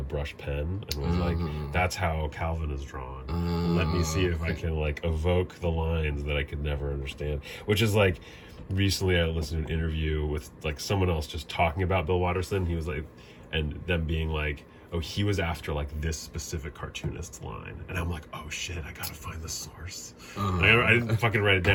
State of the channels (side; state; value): both; identical; correlation 1.00